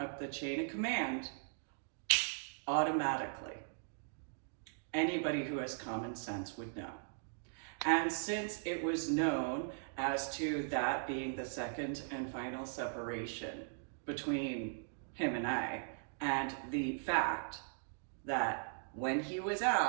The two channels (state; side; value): silent; left; digital silence